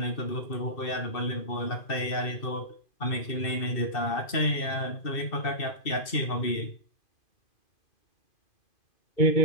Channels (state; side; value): late; right; 2.6 ms